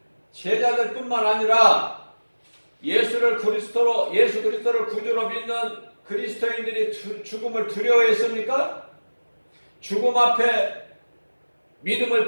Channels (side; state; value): both; inverted; correlation -1.00